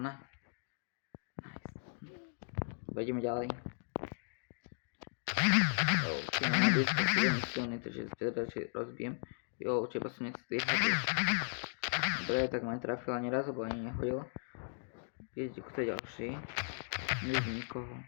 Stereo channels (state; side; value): silent; right; digital silence